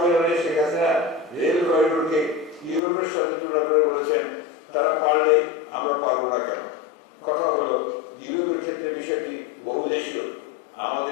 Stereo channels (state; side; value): drops out; right; at 2.8 s